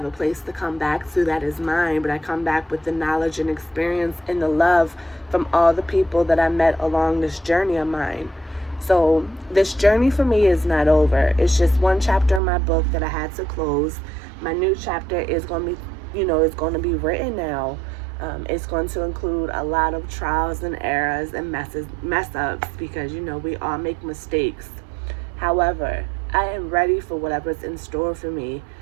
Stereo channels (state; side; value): drops out; left; at 12.4 s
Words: a place to come back to that is mine, but I come back with the knowledge and experience and the love from all the people that I met along this journey of mine. So this journey for me is not over. It's just one chapter in my book that I had to close. My new chapter is going to be, is going to be written now. It's going to include a lot of trials and errors and mess ups because, we all make mistakes. However, I am ready for whatever's in store for me.